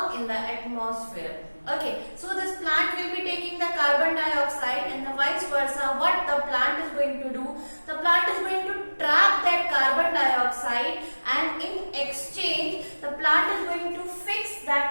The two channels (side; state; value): both; inverted; correlation -1.00